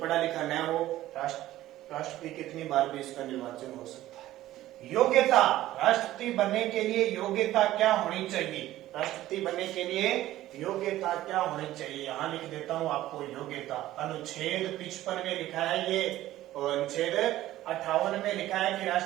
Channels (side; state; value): left; quieter; 14.8 dB